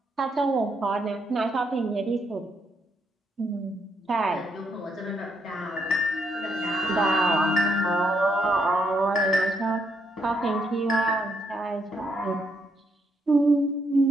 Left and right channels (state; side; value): normal; both; correlation 0.76